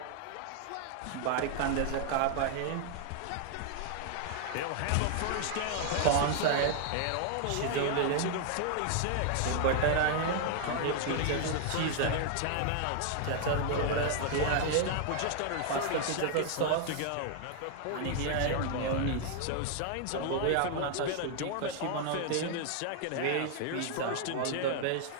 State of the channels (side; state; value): both; different; correlation 0.00